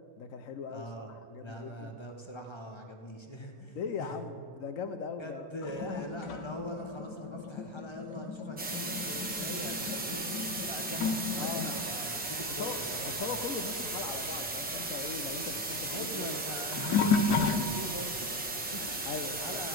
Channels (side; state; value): both; normal; correlation 0.14